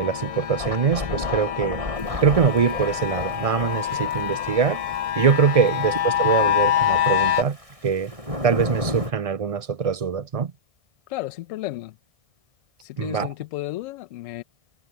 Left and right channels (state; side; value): late; left; 1.6 ms